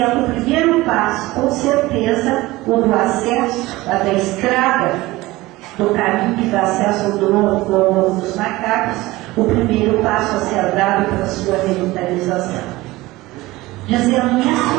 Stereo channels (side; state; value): left; quieter; 19.4 dB